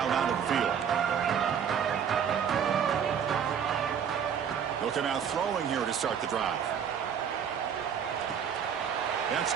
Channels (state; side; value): quieter; left; 7.8 dB